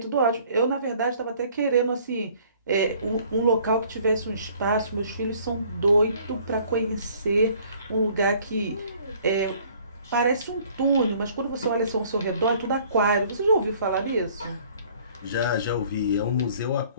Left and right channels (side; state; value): both; inverted; correlation -0.57